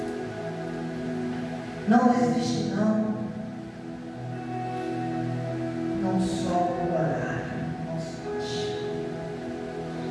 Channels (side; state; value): both; identical; correlation 1.00